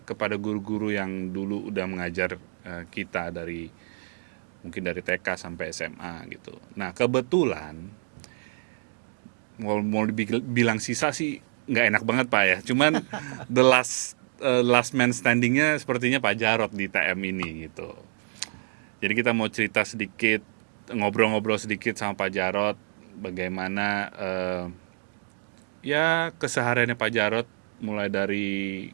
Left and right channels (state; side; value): silent; left; digital silence